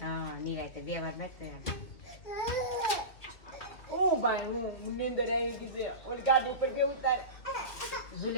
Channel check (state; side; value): late; right; 2.7 ms